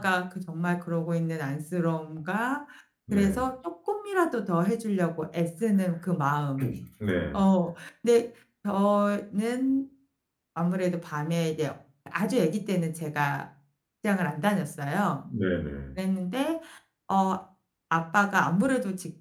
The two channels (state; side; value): identical; both; correlation 1.00